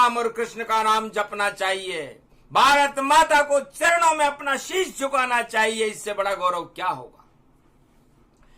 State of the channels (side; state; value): both; identical; correlation 1.00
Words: और कृष्ण का नाम जपना चाहिए। भारत माता को चरणों में अपना शीश झुकाना चाहिए। इससे बड़ा गौरव क्या होगा